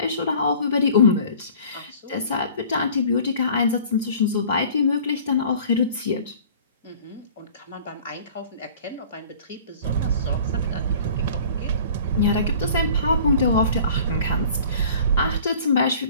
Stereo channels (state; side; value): inverted; both; correlation -0.47